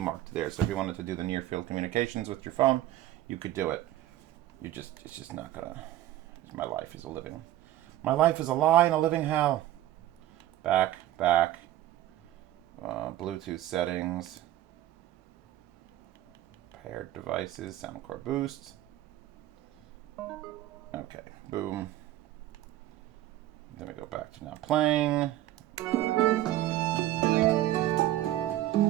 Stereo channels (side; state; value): left; quieter; 14.1 dB